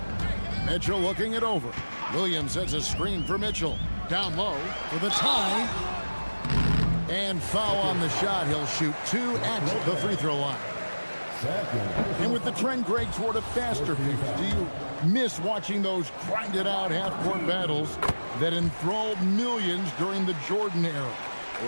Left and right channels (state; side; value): inverted; both; correlation -1.00